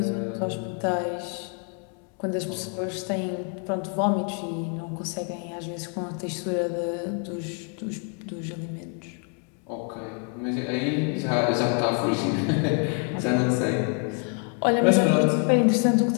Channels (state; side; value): quieter; right; 39.7 dB